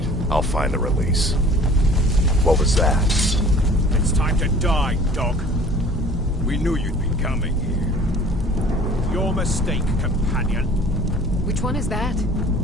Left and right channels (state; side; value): normal; both; correlation 0.48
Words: I'll find the release. What was that? It's time to die, dog. We knew you'd be coming here. Your mistake, companion. Which one is that?